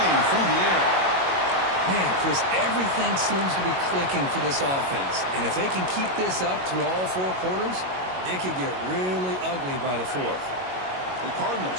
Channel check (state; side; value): late; left; 22 ms